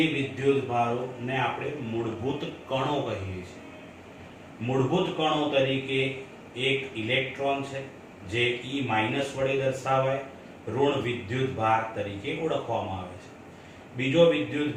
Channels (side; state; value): both; identical; correlation 1.00